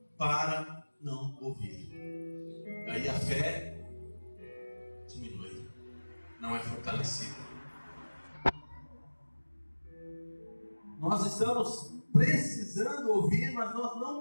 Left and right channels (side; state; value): both; inverted; correlation -1.00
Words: para não ouvir. Aí a fé diminui, não é fortalecida. Nós estamos precisando ouvir, mas nós não